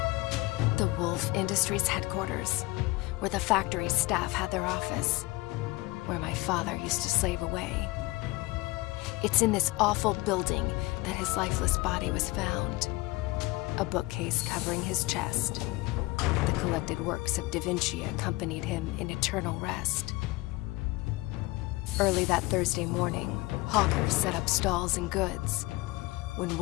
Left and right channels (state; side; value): quieter; right; 21.4 dB